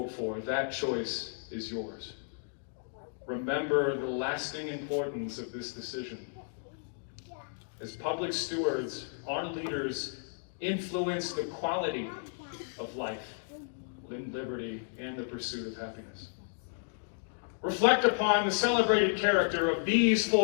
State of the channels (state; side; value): silent; right; digital silence